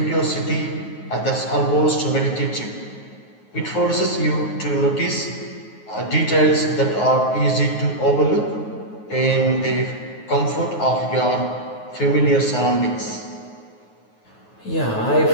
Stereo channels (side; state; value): right; late; 9.4 ms